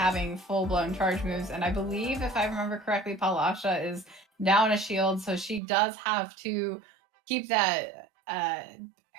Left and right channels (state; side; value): drops out; left; at 5.6 s